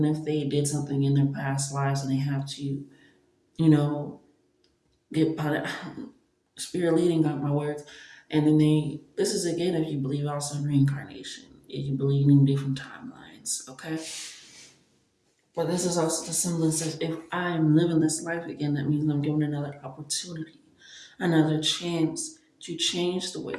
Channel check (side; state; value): both; identical; correlation 1.00